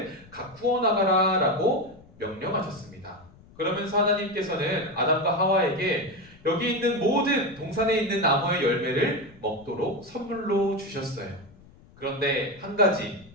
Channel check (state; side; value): noise; left; rumble, 24 dB below the sound